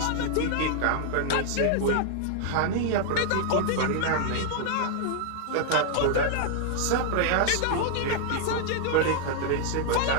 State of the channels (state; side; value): different; both; correlation 0.00